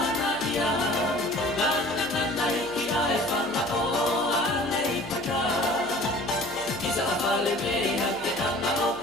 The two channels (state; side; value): noise; left; hum, 22 dB below the sound